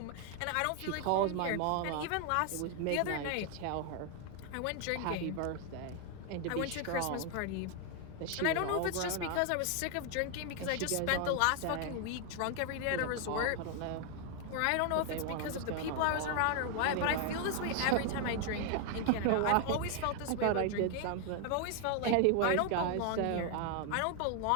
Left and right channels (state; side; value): different; both; correlation 0.00